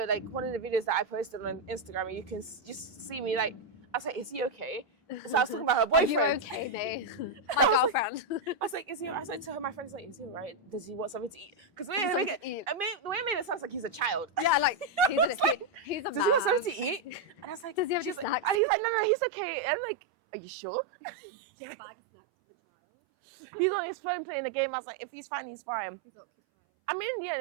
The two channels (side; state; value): left; drops out; at 18.6 s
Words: Like one of the videos that I posted on Instagram, and you can just see me like. I was like, "Is he okay?" So I was talking about her boyfriend. Are you okay, babe? My girlfriend. I was like, "Is he?" I said to her, my friend's like, "Is he alright? Does he want something to eat?" Because the way I made it sounds like he's a child. Yeah, like he's a man. Does he want something to eat? And I was like, "Does he have any snacks?" And he's like, "No, he's okay." And I'm like, "Are you sure?" Do you have a bag of snacks for the child? He's on his phone playing the game. I was like, if he's fine, he's fine. He's occupied. I mean,